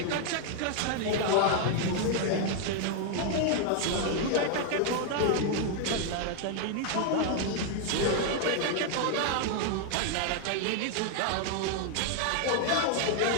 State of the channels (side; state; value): both; different; correlation 0.00